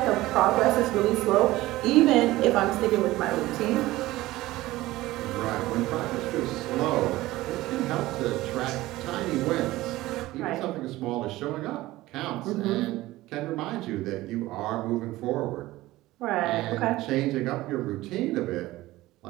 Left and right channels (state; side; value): quieter; left; 17.5 dB